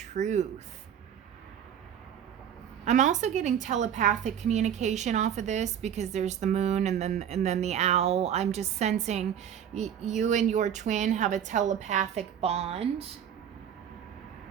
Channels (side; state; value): left; quieter; 9.1 dB